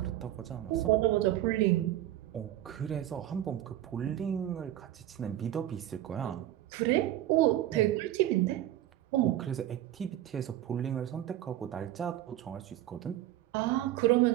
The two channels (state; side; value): quieter; left; 13.4 dB